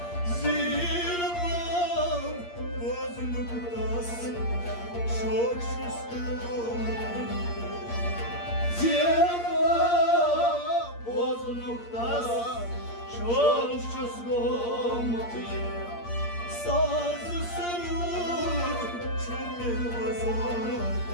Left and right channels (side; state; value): right; late; 8.6 ms